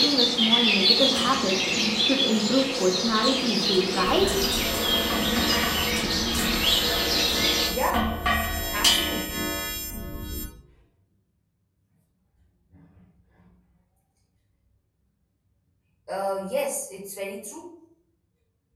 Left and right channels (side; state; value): both; identical; correlation 1.00